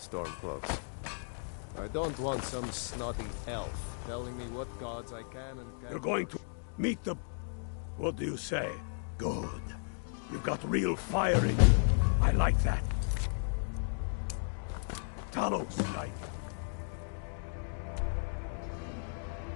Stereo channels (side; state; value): right; silent; digital silence